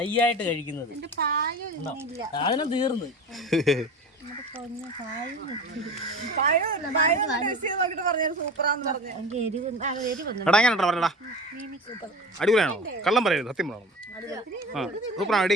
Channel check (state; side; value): normal; both; correlation 0.34